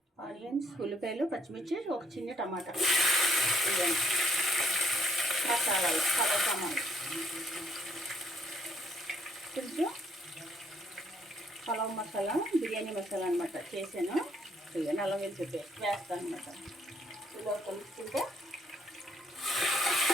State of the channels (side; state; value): both; normal; correlation 0.68